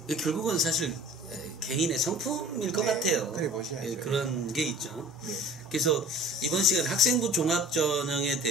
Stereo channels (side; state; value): both; normal; correlation 0.43